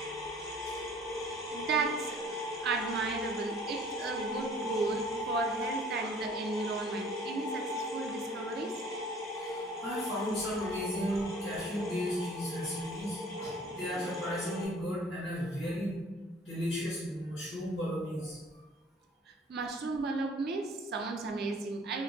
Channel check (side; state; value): both; normal; correlation 0.52